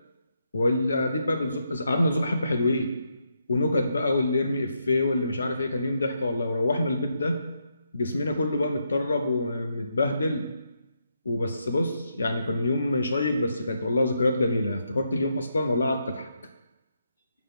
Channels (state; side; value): inverted; both; correlation -0.80